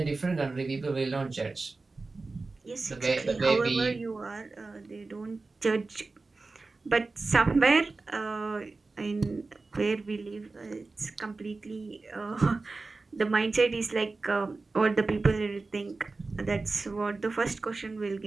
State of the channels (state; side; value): quieter; left; 3.7 dB